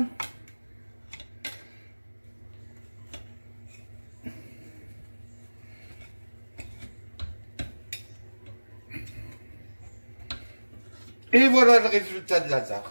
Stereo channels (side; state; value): both; inverted; correlation -1.00